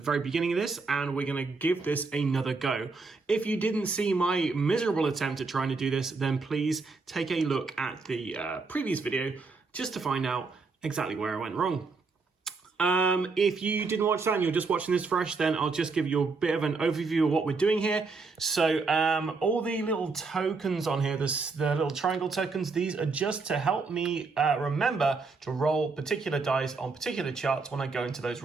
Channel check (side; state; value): left; quieter; 4.2 dB